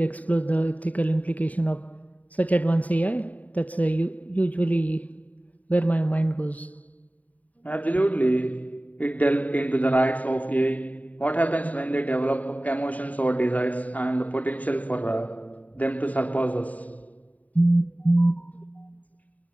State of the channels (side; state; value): right; late; 0.072 ms